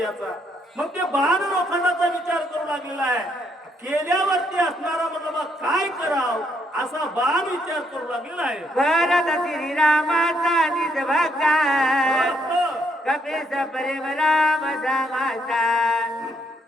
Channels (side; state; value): both; normal; correlation 0.73